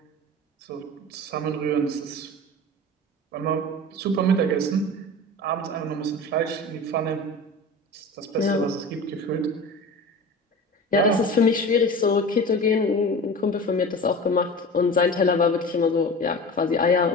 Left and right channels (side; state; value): both; normal; correlation 0.34